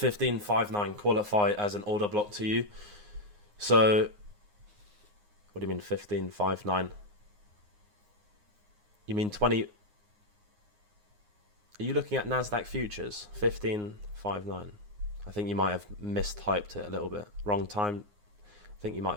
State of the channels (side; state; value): left; late; 9.6 ms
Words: qualify as an order block to you. So, what do you mean 15.59? You mean 20... Are you looking at Nasdaq futures? 15.59. I think you might have mistyped it a little bit. Wrong time. I think you